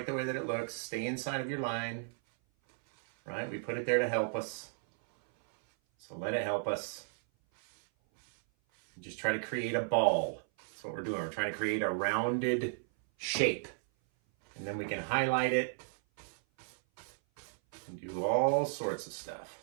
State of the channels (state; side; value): silent; left; 55 dB below the other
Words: the way that it looks. Stay inside of your line, right? We put it there to help us. So let it help us. Just try to create a ball. That's what we're doing. We're trying to create a rounded shape. And then we can highlight it and do all sorts of stuff.